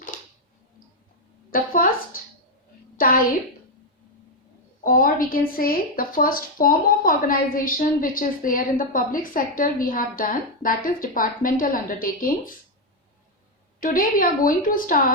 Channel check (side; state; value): both; normal; correlation 0.03